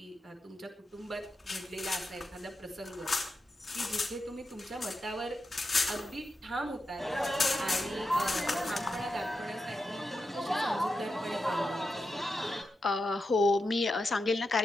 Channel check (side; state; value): both; normal; correlation 0.88